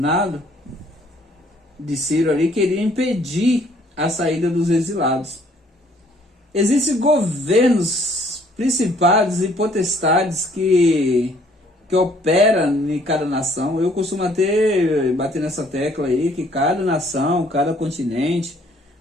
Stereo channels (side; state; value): both; normal; correlation 0.61